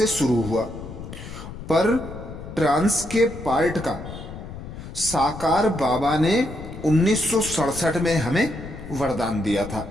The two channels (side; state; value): left; noise; rumble, 11 dB below the sound